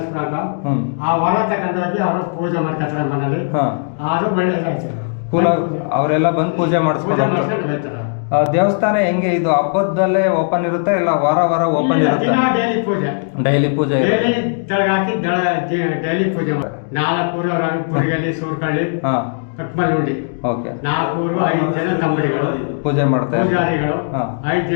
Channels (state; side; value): silent; right; digital silence